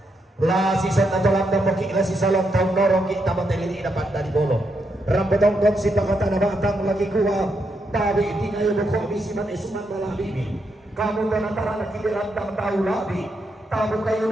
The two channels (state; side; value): normal; both; correlation 0.81